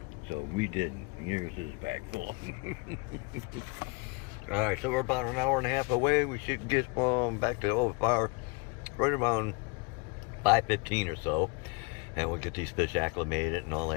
So we didn't. Here's his bag full. All right, so we're about an hour and a half away. We should get back to OFR right around 5:15 or so. And we'll get these fish acclimated and all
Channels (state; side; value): quieter; right; 29.0 dB